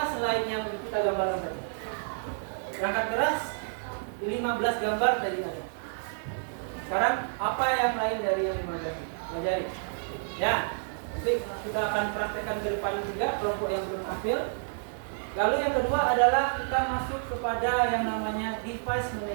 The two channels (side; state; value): left; silent; digital silence